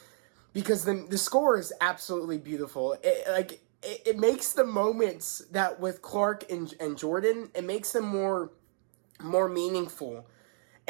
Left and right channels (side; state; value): left; silent; digital silence